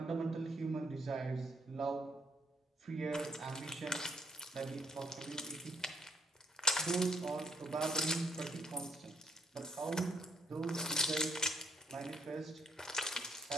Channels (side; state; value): both; normal; correlation 0.70